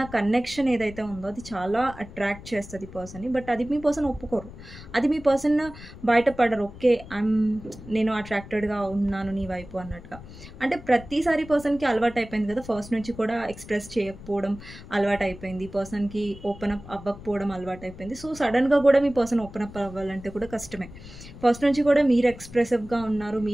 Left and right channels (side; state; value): left; noise; rumble, 16 dB below the sound